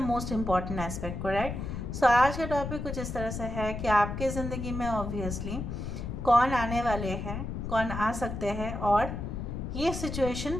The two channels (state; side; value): noise; left; rumble, 5 dB below the sound